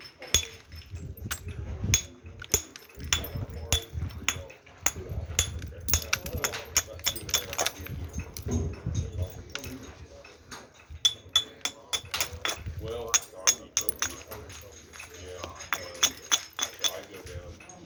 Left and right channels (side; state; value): both; identical; correlation 1.00